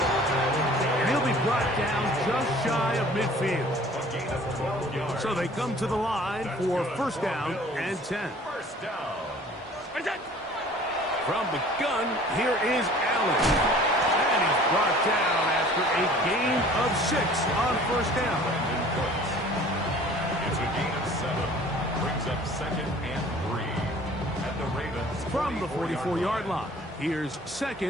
And he'll be brought down just shy of midfield. So they come to the line for 1st down and 10. First down. What's up? From the gun, here is Allen. And he's brought down after a gain of 6 on 1st down. It's a gain of 7. Brings up 2nd and 3. At the Ravens. From the 44-yard line, here's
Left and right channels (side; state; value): both; normal; correlation 0.49